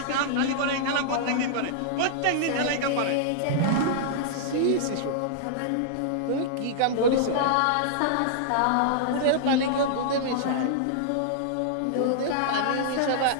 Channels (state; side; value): different; both; correlation -0.02